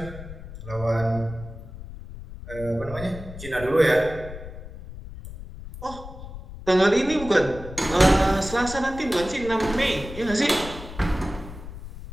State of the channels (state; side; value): noise; left; rumble, 12 dB below the sound